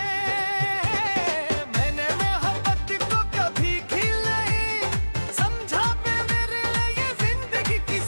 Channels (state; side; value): inverted; both; correlation -1.00